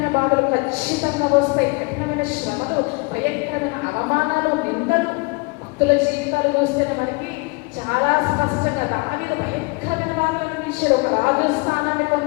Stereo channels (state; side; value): quieter; right; 28.6 dB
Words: బాధలు ఖచ్చితంగా వస్తాయి. కఠినమైన శ్రమలు, భయంకరమైన అవమానాలు, నిందలు. భక్తుల జీవితాలు చూస్తేనే మనకి చాలా స్పష్టంగా దావీదు భయంకరమైన బాధలు అనిపించాడు. ఒక రాజు స్థానాన్ని